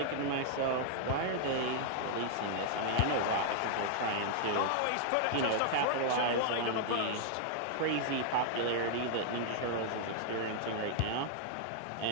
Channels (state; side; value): different; both; correlation -0.01